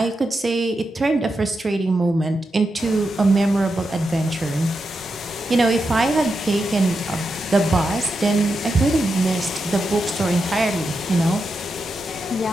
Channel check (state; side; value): normal; both; correlation 0.87